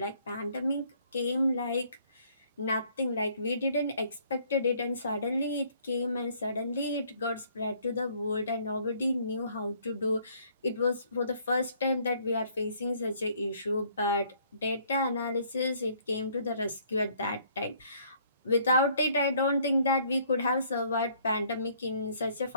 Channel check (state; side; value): inverted; both; correlation -0.62